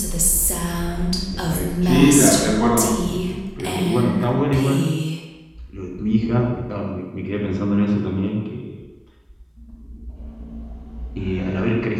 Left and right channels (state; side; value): identical; both; correlation 1.00